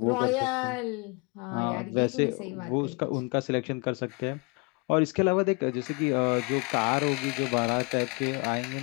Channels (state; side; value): quieter; right; 30.9 dB